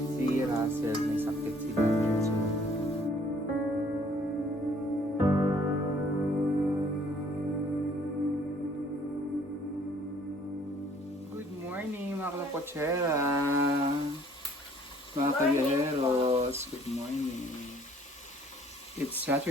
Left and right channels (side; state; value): both; normal; correlation 0.59